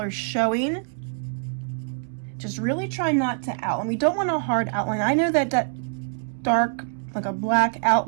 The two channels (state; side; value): silent; left; digital silence